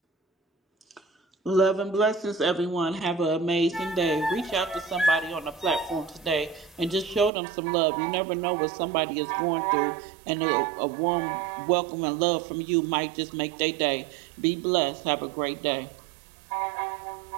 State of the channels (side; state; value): left; drops out; at 7.3 s